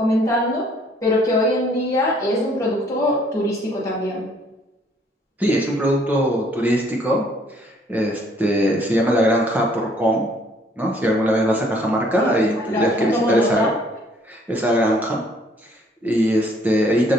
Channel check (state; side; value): normal; both; correlation 0.62